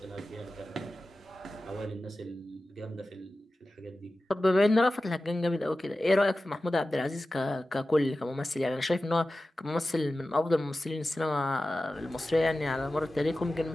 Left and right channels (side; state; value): both; normal; correlation 0.95